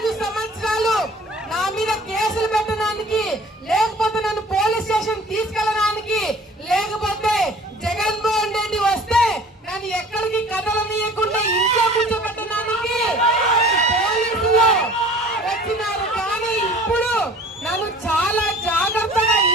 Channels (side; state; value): both; normal; correlation 0.47